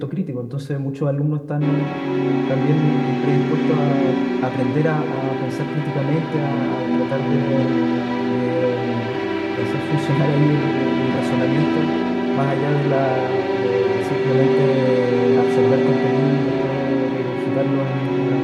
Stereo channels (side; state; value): both; identical; correlation 1.00